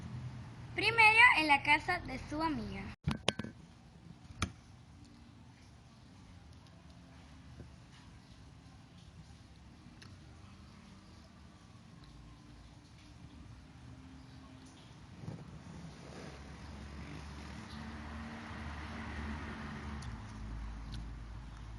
Primero en la casa de su amiga.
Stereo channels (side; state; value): both; identical; correlation 1.00